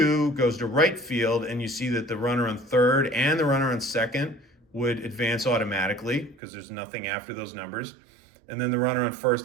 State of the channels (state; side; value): drops out; left; at 6.4 s